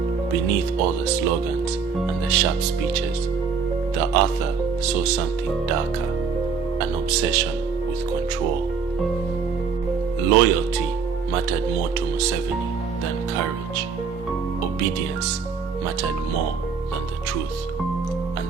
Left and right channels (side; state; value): left; quieter; 5.6 dB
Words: beneath all the slogans and the sharp speeches, the author saw something darker, an obsession with control. Loyalty mattered more to Museveni than courage. Obedience mattered more than the truth. And